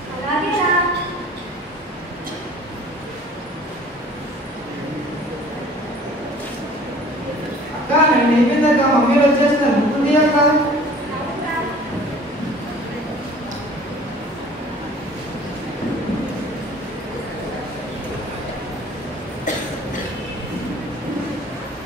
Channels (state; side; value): normal; both; correlation 0.48